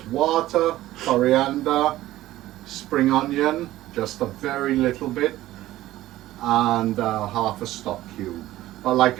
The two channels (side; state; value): left; quieter; 15.4 dB